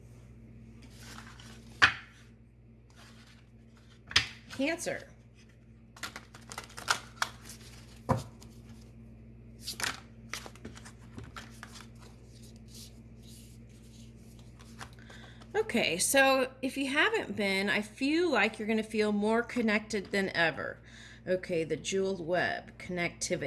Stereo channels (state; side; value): identical; both; correlation 1.00